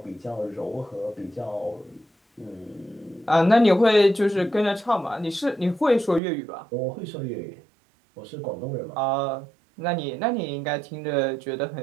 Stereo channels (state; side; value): drops out; left; at 6.2 s